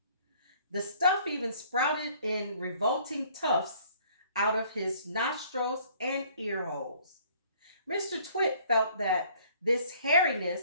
The stuff even sprouted in revolting tufts out of his nostrils and ear holes. Mr. Twit felt that this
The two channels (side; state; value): both; inverted; correlation -0.58